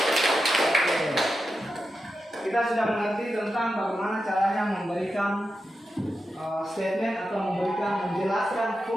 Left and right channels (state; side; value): normal; both; correlation 0.89